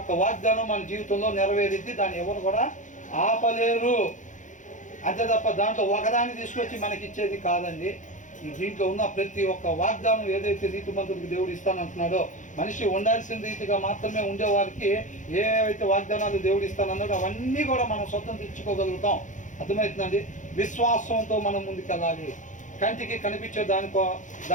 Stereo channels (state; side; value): late; right; 0.36 ms